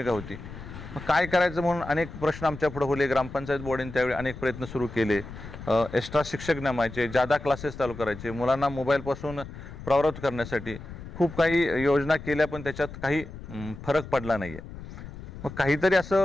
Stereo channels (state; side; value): noise; left; rumble, 13 dB below the sound